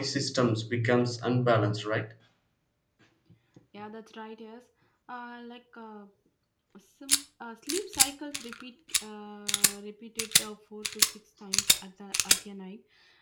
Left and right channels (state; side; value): identical; both; correlation 1.00